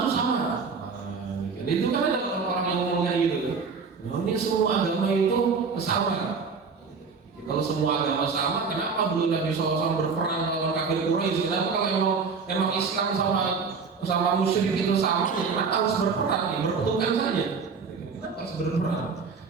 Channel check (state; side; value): quieter; left; 5.2 dB